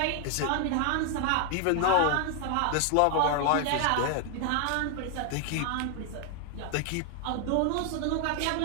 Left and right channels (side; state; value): both; different; correlation 0.00